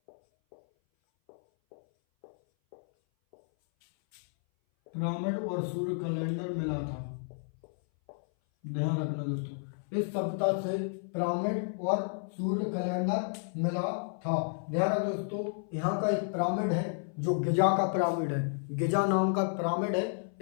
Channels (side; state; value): right; silent; 57 dB below the other